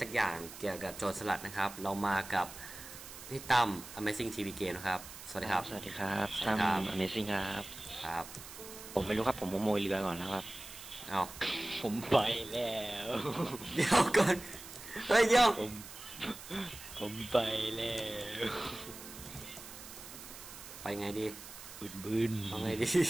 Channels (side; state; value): right; noise; hiss, 14 dB below the sound